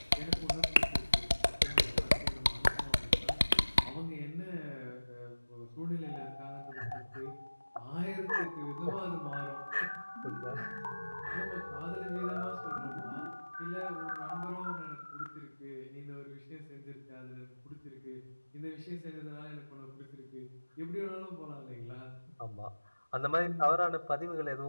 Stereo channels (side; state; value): both; inverted; correlation -1.00